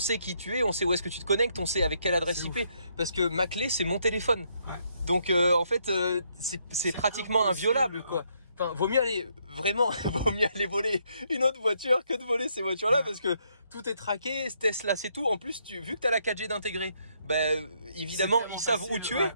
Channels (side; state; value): both; inverted; correlation -0.74